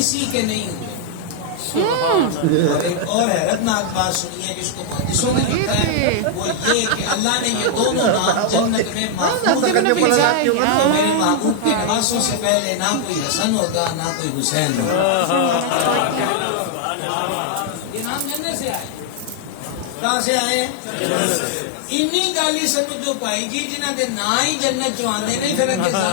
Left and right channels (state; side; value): different; both; correlation 0.00